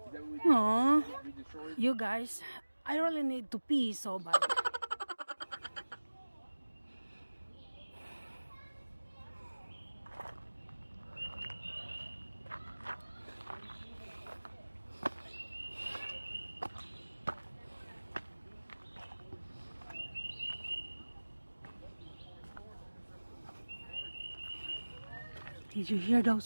that what we Aww. we destroyed? You guys, I really need to pee so bad. Did you hear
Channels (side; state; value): both; inverted; correlation -1.00